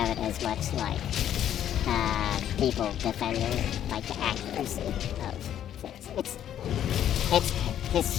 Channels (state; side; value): quieter; right; 10.6 dB